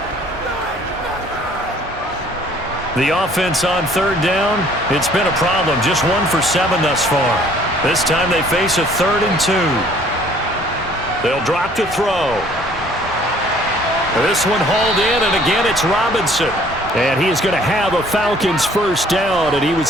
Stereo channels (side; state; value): both; normal; correlation 0.57